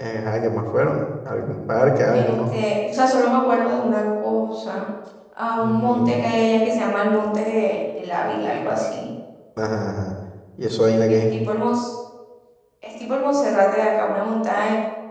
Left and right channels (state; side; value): identical; both; correlation 1.00